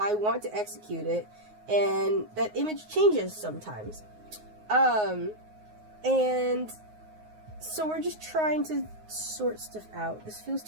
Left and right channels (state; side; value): late; left; 9.5 ms